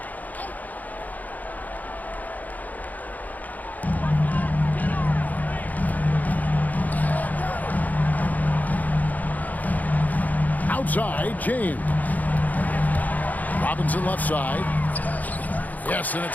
Outside, James. Robinson left side. Yes, and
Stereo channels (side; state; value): right; late; 0.080 ms